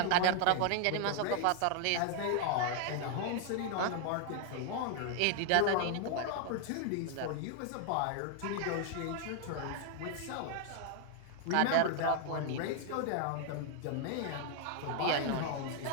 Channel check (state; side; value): different; both; correlation 0.00